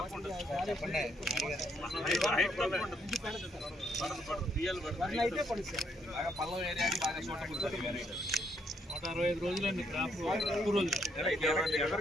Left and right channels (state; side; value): normal; both; correlation 0.72